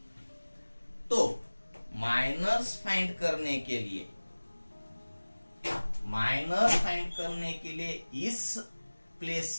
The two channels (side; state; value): both; inverted; correlation -1.00